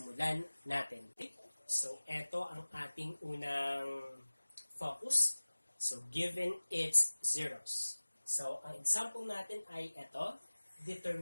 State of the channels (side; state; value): both; inverted; correlation -1.00